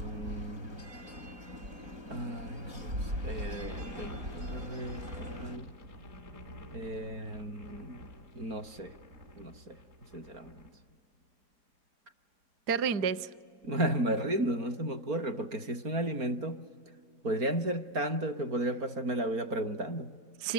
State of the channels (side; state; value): left; late; 4.3 ms